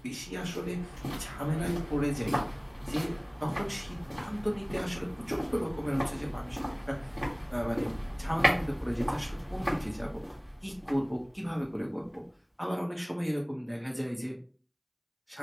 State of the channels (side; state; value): both; identical; correlation 1.00